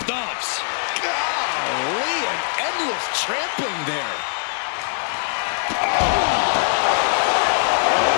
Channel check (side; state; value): right; silent; 56 dB below the other